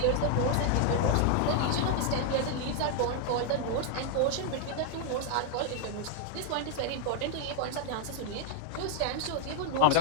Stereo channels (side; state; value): both; different; correlation 0.00